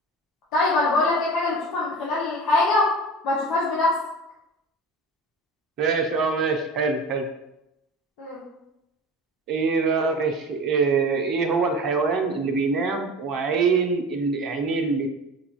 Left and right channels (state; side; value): normal; both; correlation 0.35